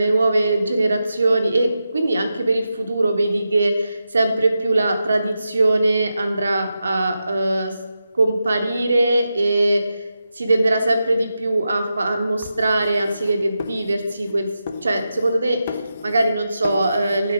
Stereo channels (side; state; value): both; inverted; correlation -0.89